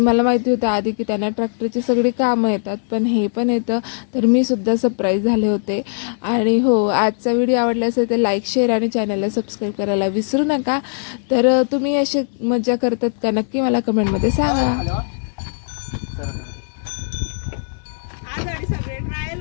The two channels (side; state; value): right; silent; digital silence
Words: माहिती होतं आधी की त्यांना ट्रॅक्टरची सगळी कामं येतात, पण हे पण येतं. तर मी सुद्धा सरप्राईज झाले होते. आणि हो, आजचा व्हिडिओ आवडला असेल तर लाईक, शेअर आणि चॅनलला सबस्क्राईब करायला विसरू नका. तर तुम्ही अशी मजा करतात का, नक्की मला कमेंटमध्ये सांगा.